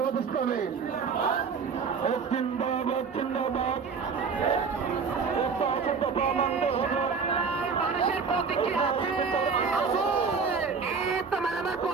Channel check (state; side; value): quieter; left; 5.4 dB